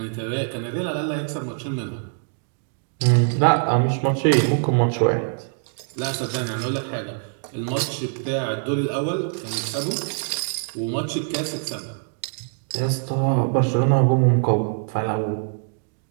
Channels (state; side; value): silent; left; 63 dB below the other